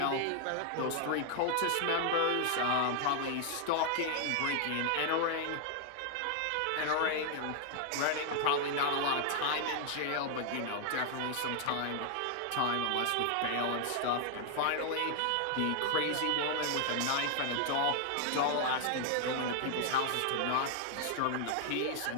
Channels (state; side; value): different; both; correlation 0.00